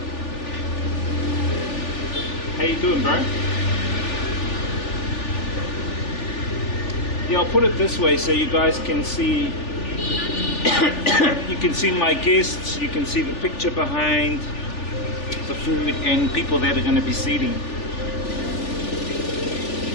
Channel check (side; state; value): right; late; 3.4 ms